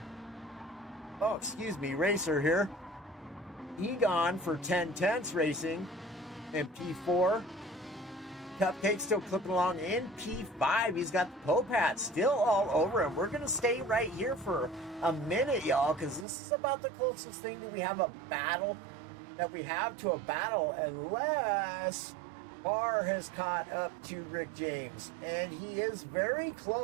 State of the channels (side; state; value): left; drops out; at 16.2 s